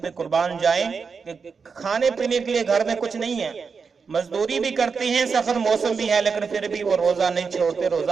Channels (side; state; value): left; quieter; 5.4 dB